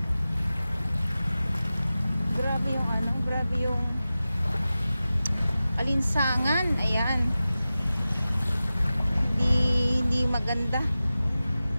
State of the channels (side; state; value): both; inverted; correlation -0.95